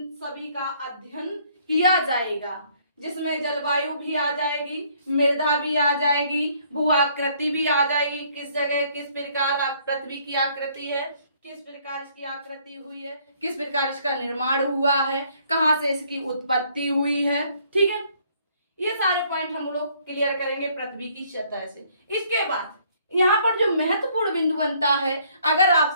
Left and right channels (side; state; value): both; inverted; correlation -0.64